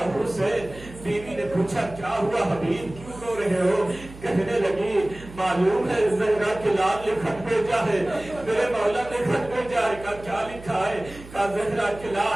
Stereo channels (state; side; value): noise; right; hum, 17 dB below the sound